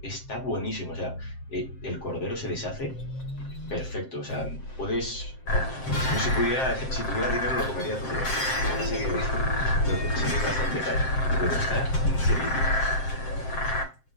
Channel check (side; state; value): right; late; 7.6 ms